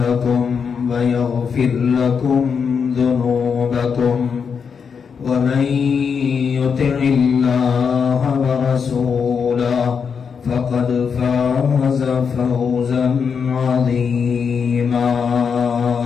ويغفر لكم ذنوبكم ومن يطع الله ورسوله فقد فاز فوزا عظيما.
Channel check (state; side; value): quieter; right; 6.3 dB